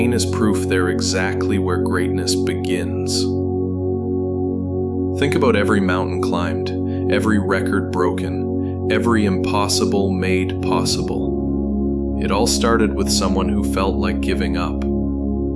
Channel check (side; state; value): both; identical; correlation 1.00